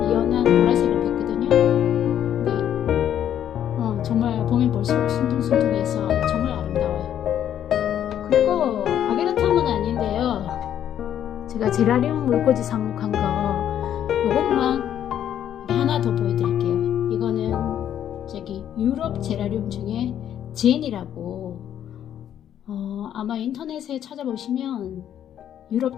연한 보라색을 받거든요. 근데 정말 보면 볼수록 순둥순둥해서 정말 아름다워요. 그리고 아게라텀은 아닌데요, 제가 제라늄 물꽂이 삽목한 거 이것만 하나 더 보여드릴게요. 이거는 저기 유럽 제라늄 중에 제니라고, 아마 인터넷에 찾아보시면 유럽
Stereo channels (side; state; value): right; quieter; 10.2 dB